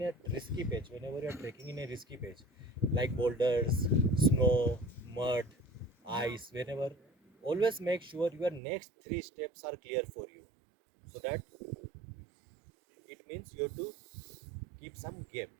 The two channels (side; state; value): left; drops out; at 8.6 s